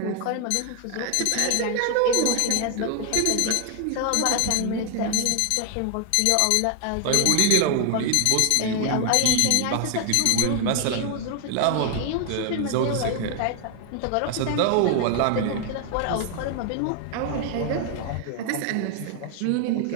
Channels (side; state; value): both; different; correlation 0.01